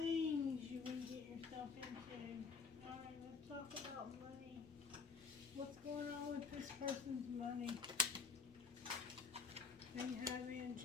you will get yourself into. Alright, let's talk about money. What's going on with this person's money? They have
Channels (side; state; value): right; quieter; 4.9 dB